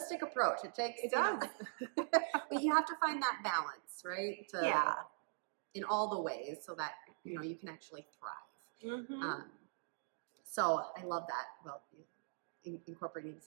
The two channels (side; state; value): left; silent; digital silence